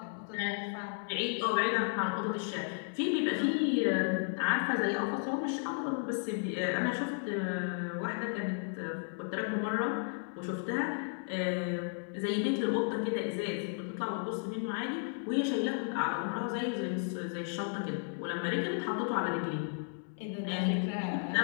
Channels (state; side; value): silent; right; 55 dB below the other